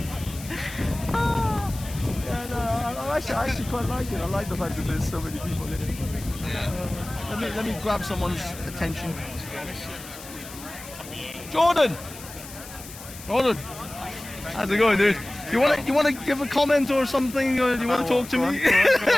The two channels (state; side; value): noise; left; hiss, 15 dB below the sound